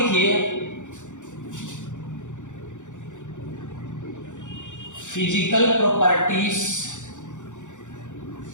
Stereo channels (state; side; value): late; right; 0.85 ms